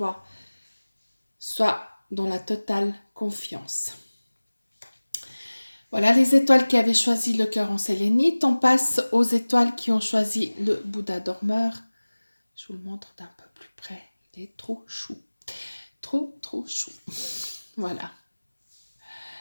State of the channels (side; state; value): both; inverted; correlation -1.00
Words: sois dans la totale confiance. Voilà les étoiles qui avaient choisi le cœur en sélénite. On passe aux étoiles qui ont choisi le Bouddha dormeur. Je vous le montre d'un peu plus près. Il est trop chou. Trop, trop chou. Voilà.